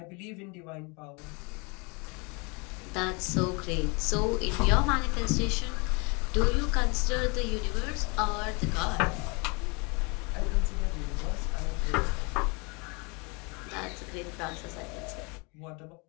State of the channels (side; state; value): right; quieter; 30.4 dB